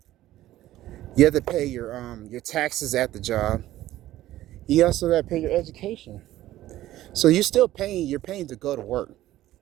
You have to pay your taxes at the job. You also got to pay your education. So you're still paying. You're paying to go to work.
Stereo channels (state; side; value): quieter; left; 14.6 dB